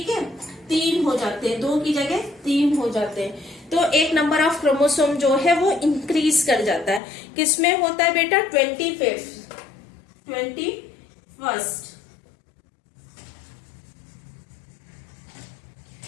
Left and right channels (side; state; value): right; drops out; at 7.0 s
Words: है, 3 हो जाते हैं, 2 की जगह 3 हो जाते हैं, तो एक नंबर ऑफ क्रोमोसोम जो है वो इंक्रीज कर जाता है। किसमें होता है बेटा, 21st